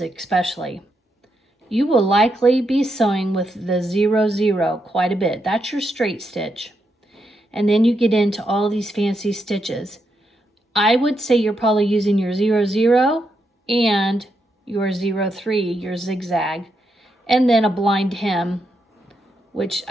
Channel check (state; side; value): normal; both; correlation 0.82